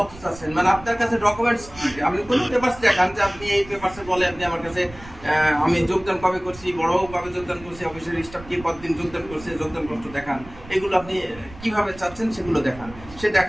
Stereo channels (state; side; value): noise; right; rumble, 18 dB below the sound